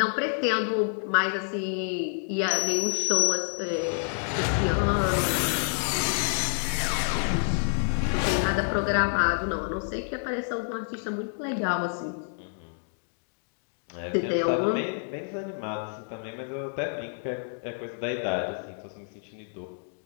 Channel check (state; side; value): silent; right; digital silence